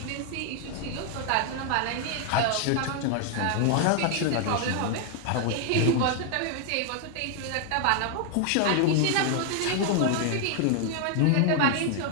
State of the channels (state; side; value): different; both; correlation 0.00